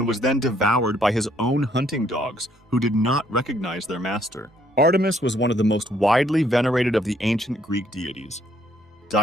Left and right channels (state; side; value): normal; both; correlation 0.67